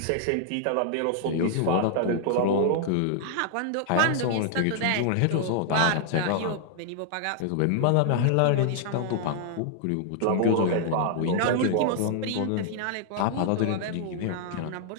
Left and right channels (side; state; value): both; different; correlation -0.01